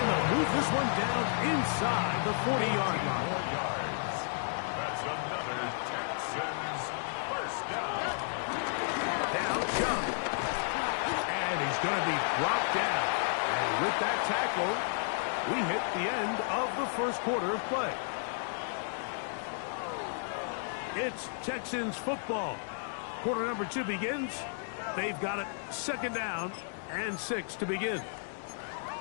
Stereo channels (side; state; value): right; silent; digital silence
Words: they'll move this one down inside the 40-yard line. That's another Texans first down. Now Chubb. And he's going to be brought down. And with that tackle, we hit the end of the first quarter of play. It's Texans football. Quarter number 2 begins. They've got it 2nd down and 6 to begin.